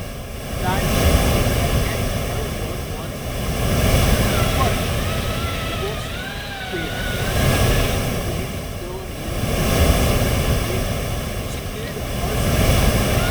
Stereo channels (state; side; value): identical; both; correlation 1.00